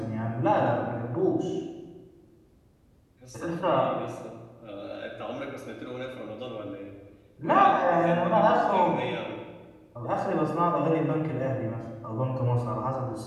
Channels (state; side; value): identical; both; correlation 1.00